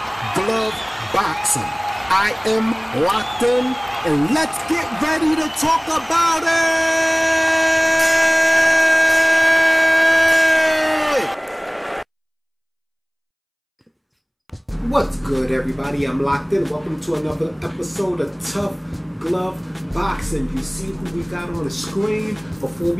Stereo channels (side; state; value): both; identical; correlation 1.00